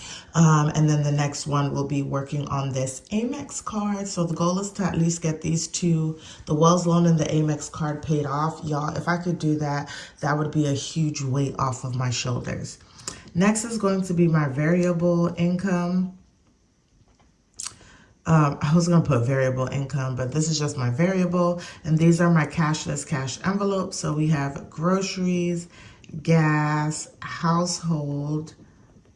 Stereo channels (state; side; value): identical; both; correlation 1.00